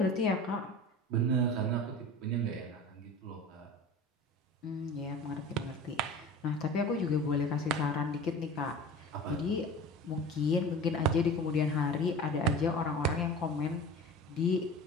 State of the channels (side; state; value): both; normal; correlation 0.36